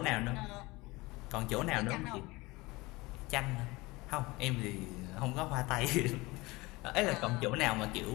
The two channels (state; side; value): quieter; right; 22.4 dB